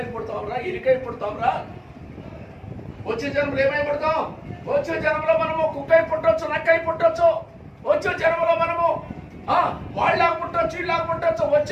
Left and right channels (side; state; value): both; identical; correlation 1.00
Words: పుడతావురా, ఎలికై పుడతావురా. వచ్చే జన్మలో ఏమై పుడతాం? వచ్చే జన్మలో మనము కుక్కై పుట్టవచ్చు, నక్కై పుట్టవచ్చు. వచ్చే జన్మలో మనము వాళ్ళలాగా పుట్టవచ్చు, వీళ్ళలాగా పుట్టవచ్చు.